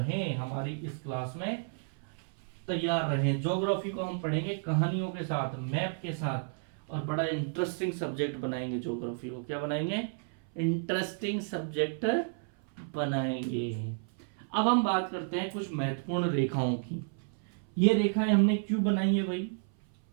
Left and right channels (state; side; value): silent; left; 57 dB below the other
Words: हमारी इस क्लास में तैयार रहें। ज्योग्राफी को हम पढ़ेंगे कहानियों के साथ, मैप के साथ, और बड़ा इंटरेस्टिंग सब्जेक्ट बनाएंगे। ज्योग्राफी को क्या बनाएंगे? इंटरेस्टिंग सब्जेक्ट बनाएंगे। अब हम बात करते हैं कुछ महत्वपूर्ण रेखाओं की। ये रेखाएं हमने क्यों बनाई है भाई?